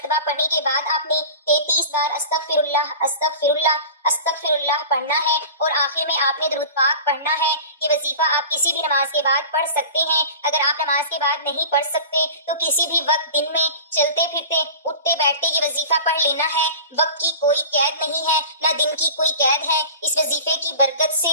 پڑھنے کے بعد آپ نے 33 بار استغفر اللہ استغفر اللہ استغفر اللہ پڑھنا ہے، اور آخر میں آپ نے درود پاک پڑھنا ہے۔ یہ وظیفہ آپ کسی بھی نماز کے بعد پڑھ سکتے ہیں۔ اگر آپ نماز کے بعد نہیں پڑھ سکتے تو کسی بھی وقت دن میں چلتے پھرتے اٹھتے بیٹھتے یہ وظیفہ پڑھ لینا ہے۔ وقت کی کوئی قید نہیں ہے، نہ دن کی کوئی قید ہے۔ اس وظیفے کی برکت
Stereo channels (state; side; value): inverted; both; correlation -0.37